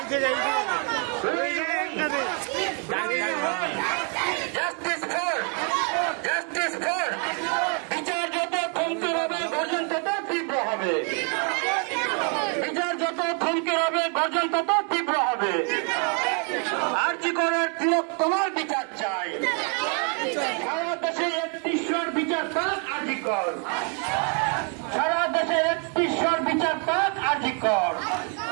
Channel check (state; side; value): quieter; left; 39.0 dB